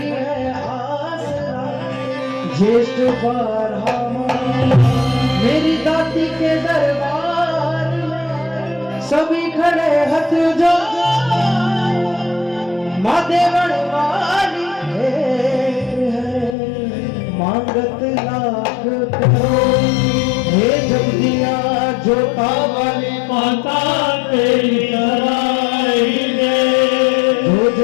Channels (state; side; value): drops out; right; at 16.6 s